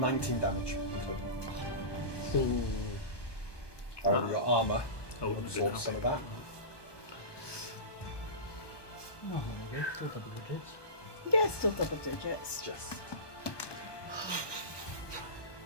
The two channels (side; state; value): right; late; 1.2 ms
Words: damage in total. However, your armour Oh, absorbs some of that. Oh, there we go. Still double digits. Yeah, still double digits. Just.